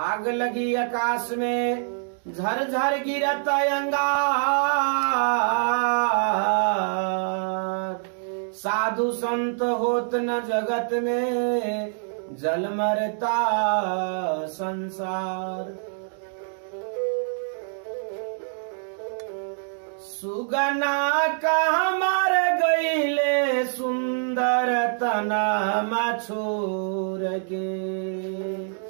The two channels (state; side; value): silent; left; digital silence